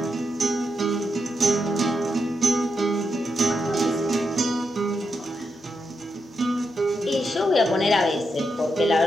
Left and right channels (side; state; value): both; normal; correlation 0.84